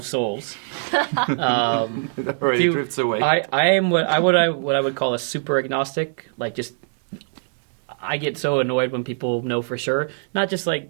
souls, it already do- drifts away. I am what I would call a super agnostic. Like just, I get so annoyed when people know for sure. Not just like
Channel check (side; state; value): left; silent; digital silence